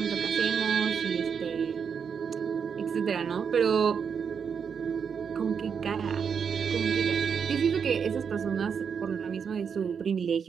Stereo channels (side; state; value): left; quieter; 6.7 dB